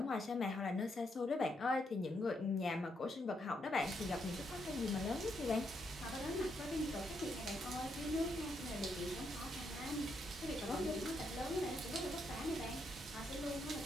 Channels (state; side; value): normal; both; correlation 0.78